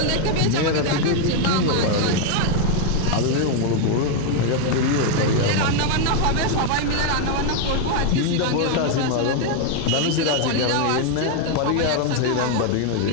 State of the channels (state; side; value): different; both; correlation 0.01